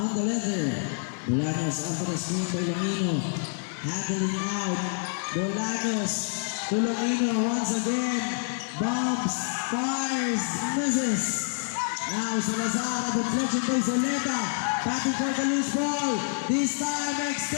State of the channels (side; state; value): right; silent; digital silence